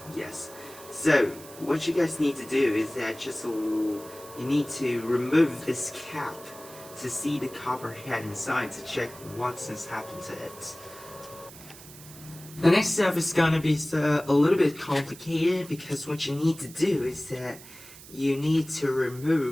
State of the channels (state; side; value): noise; right; hiss, 18 dB below the sound